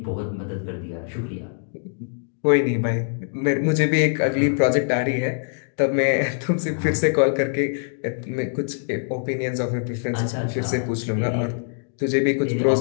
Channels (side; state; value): right; silent; digital silence